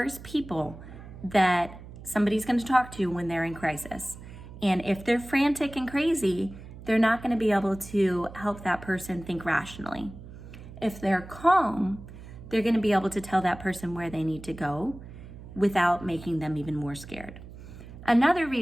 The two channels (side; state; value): right; noise; hum, 15 dB below the sound